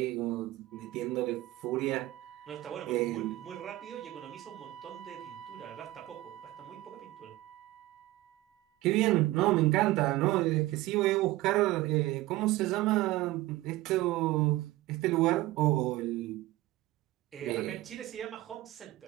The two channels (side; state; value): left; quieter; 17.7 dB